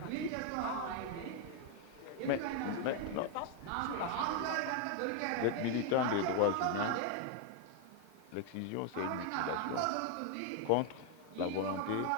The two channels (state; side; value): different; both; correlation 0.01